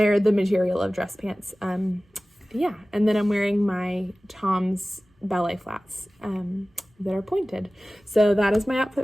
the material of dress pants. Yeah, and then I'm wearing my Tom's ballet flats that are pointed. So that is my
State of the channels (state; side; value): normal; both; correlation 0.97